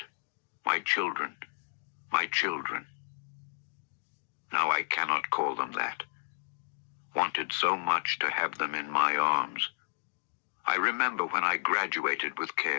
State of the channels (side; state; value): right; silent; digital silence